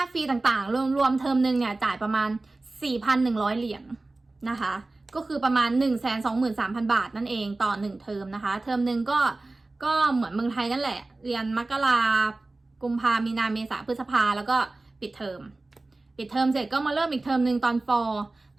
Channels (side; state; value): left; quieter; 3.1 dB